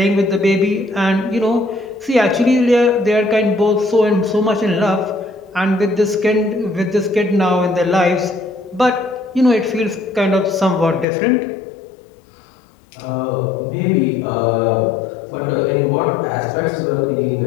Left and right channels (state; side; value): drops out; right; at 11.1 s